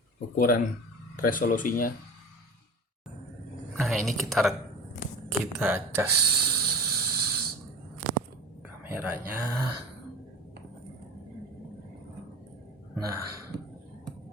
ukuran resolusinya. Nah, ini kita cas kamera. merahnya. Nah,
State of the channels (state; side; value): normal; both; correlation 0.34